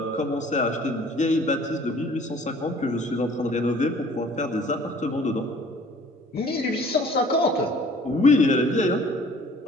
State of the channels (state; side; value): normal; both; correlation 0.52